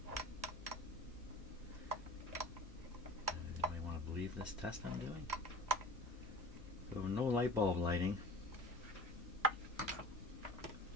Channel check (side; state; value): both; normal; correlation 0.39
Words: Believe this test I'm doing. So no light bulb lighting. I